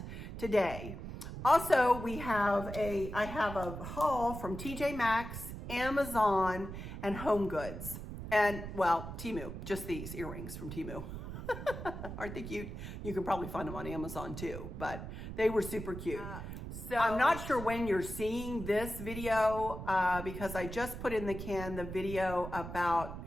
today. Also, I have a haul from TJMaxx, Amazon, and HomeGoods. And, well, Temu, just these earrings from Temu. Aren't they cute? You can probably find them on Amazon too, but they were super cute. So I'm not sure when you're seeing this video because I just put in the can the video about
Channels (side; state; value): right; noise; rumble, 8 dB below the sound